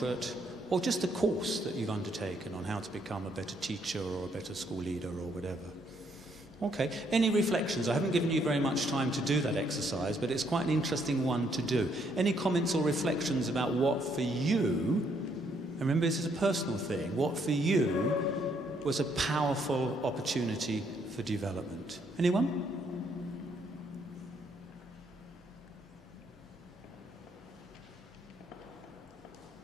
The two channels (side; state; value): both; normal; correlation 0.71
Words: or just a course that you've undertaken on how to become a better teacher or a better school leader or whatever. Okay, any reflections? I haven't given you very much time to do that exercise, but it's quite an interesting one to do. Any comments or reflections about what for you, remember this is a personal thing, what for you was a powerful opportunity for development? Anyone?